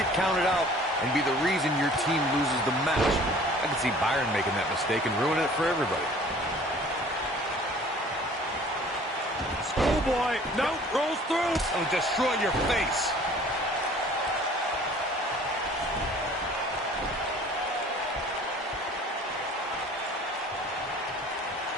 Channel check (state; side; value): normal; both; correlation 0.50